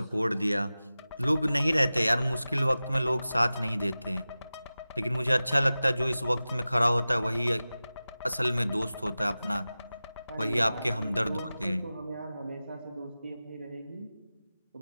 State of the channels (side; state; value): both; inverted; correlation -0.96